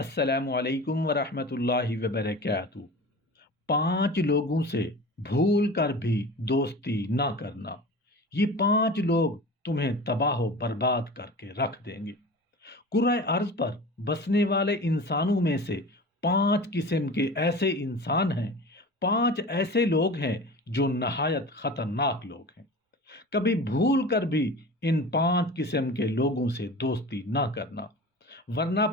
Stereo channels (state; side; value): normal; both; correlation 0.35